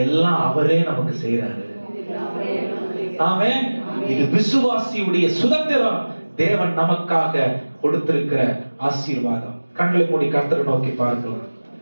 எல்லாம் அவரே நமக்கு செய்யறாரு. ஆமென். இது விசுவாசியுடைய சுதந்திரம், தேவன் நமக்காக கொடுத்திருக்கிற ஆசீர்வாதம். கண்களை மூடி கர்த்தரை நோக்கி பார்க்கலாம்.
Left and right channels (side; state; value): both; inverted; correlation -1.00